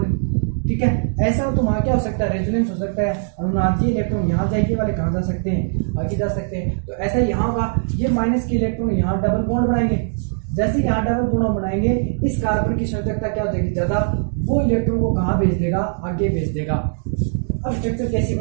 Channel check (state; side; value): silent; left; digital silence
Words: ठीक है। ऐसा हो तो वहां क्या हो सकता है, रेजोनेंस हो सकता है, अनुनादीय इलेक्ट्रॉन यहाँ जाएंगे वाले कहाँ जा सकते हैं, आगे जा सकते हैं। तो ऐसा यहाँ होगा, ये माइनस के इलेक्ट्रॉन यहाँ डबल बॉन्ड बनाएंगे, जैसे यहाँ डबल बॉन्ड बनाएंगे इस कार्बन की संयोजकता क्या हो जाएगी, ज्यादा, वो इलेक्ट्रॉन को कहाँ भेज देगा, आगे भेज देगा। अब स्ट्रक्चर कैसी